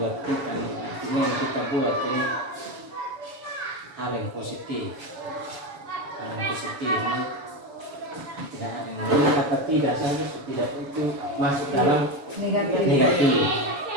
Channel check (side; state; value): left; late; 7.2 ms